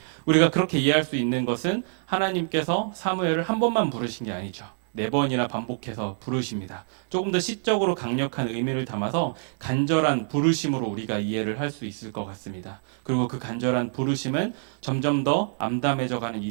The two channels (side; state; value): left; silent; digital silence